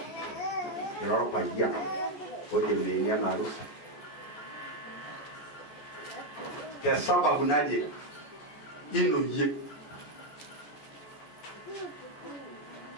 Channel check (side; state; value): right; late; 14 ms